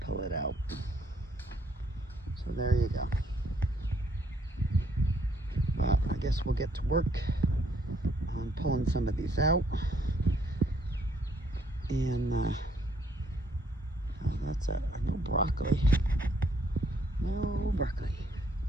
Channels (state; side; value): normal; both; correlation 0.68